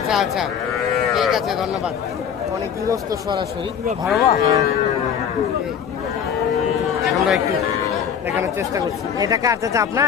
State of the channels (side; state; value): right; quieter; 8.0 dB